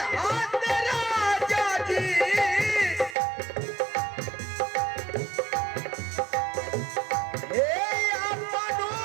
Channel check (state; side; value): drops out; left; at 3.2 s